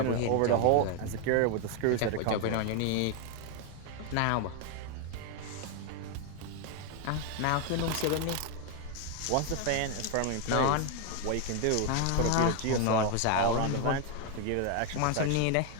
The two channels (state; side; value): different; both; correlation 0.01